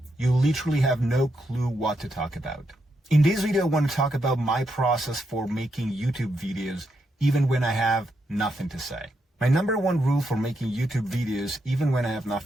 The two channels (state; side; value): normal; both; correlation 0.81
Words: you literally have no clue what to talk about. In this video, I want to talk about my process for making YouTube videos even when I have nothing to say. My number one rule for making YouTube videos, even when I have